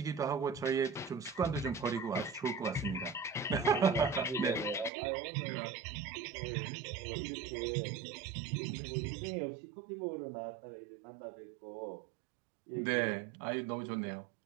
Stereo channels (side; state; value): left; drops out; at 4.9 s